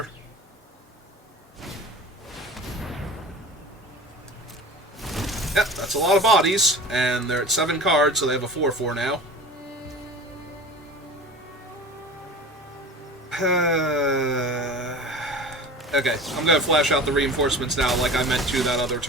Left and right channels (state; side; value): normal; both; correlation 0.37